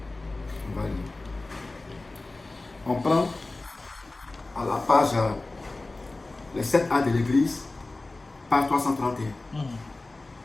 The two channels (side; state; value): right; quieter; 3.1 dB